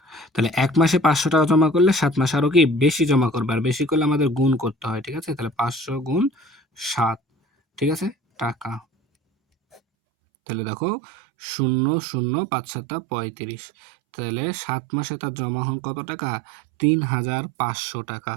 তাহলে ১ মাসে ৫০০ টাকা জমা করলে ৭ মাসে আরো কি বেশি জমা করবে, আর বেশি করলে আমাদের গুণ করতে হয়। ঠিক আছে? তাহলে ৫০০ গুণ ৭, ঠিক আছে, টাকা। তাহলে দেখো, ০, ০, ৫ ৭ ৩৫। তাহলে ৭ মাসে তার জমা হন কত টাকা? ৩,৫০০ টাকা।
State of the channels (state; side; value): drops out; left; at 9.8 s